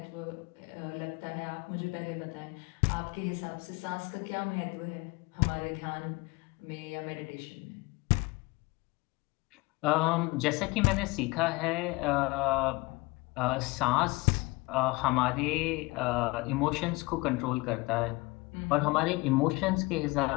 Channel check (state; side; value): quieter; right; 24.0 dB